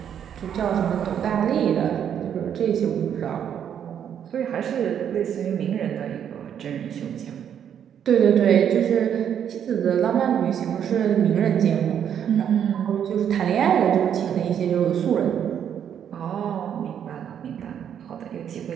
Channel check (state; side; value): quieter; left; 8.9 dB